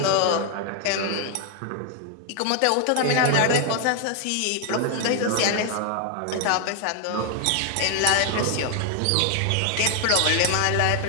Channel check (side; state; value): both; different; correlation 0.00